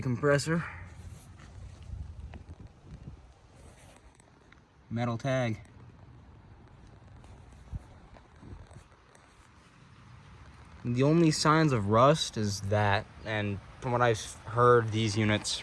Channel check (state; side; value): identical; both; correlation 1.00